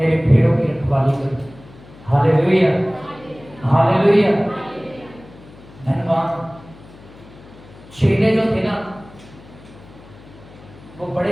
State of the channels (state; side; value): noise; left; hum, 21 dB below the sound